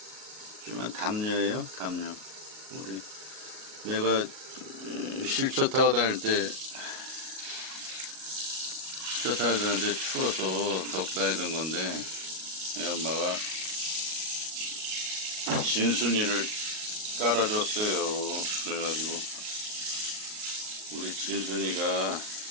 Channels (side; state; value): left; late; 38 ms